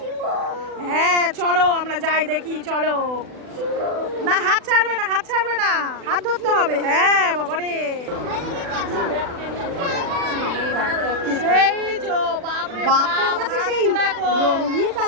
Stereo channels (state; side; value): late; left; 40 ms